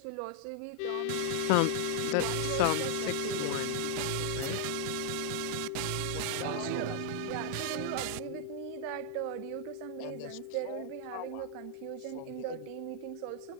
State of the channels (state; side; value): different; both; correlation 0.00